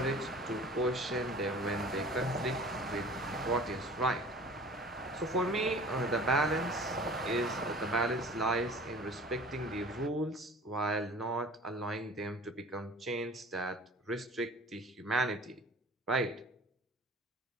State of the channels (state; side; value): normal; both; correlation 0.45